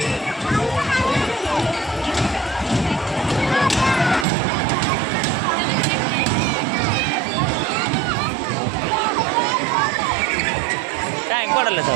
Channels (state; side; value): drops out; left; at 4.2 s